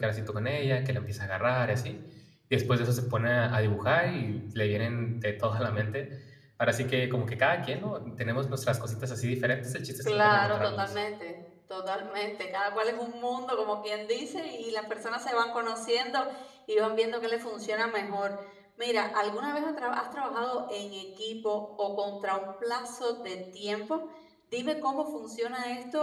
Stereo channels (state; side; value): identical; both; correlation 1.00